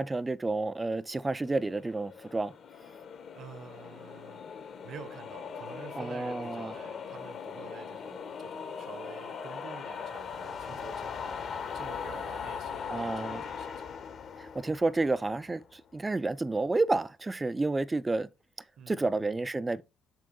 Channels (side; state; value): both; normal; correlation 0.91